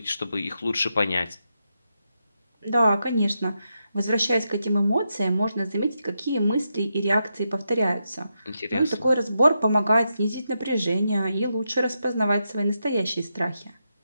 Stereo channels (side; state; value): both; inverted; correlation -0.85